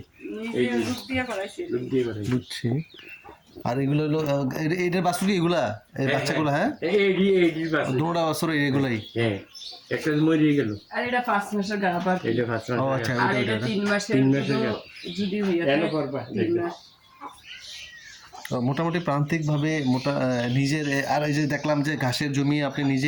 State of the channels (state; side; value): identical; both; correlation 1.00